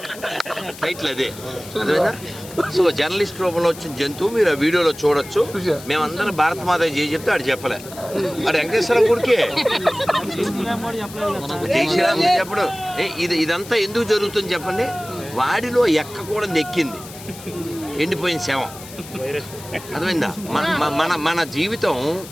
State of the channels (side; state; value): left; noise; hiss, 16 dB below the sound